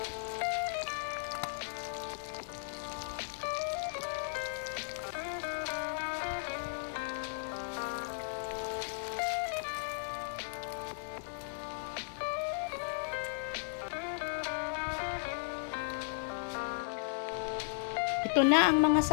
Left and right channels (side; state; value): right; silent; digital silence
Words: Ito na ang mga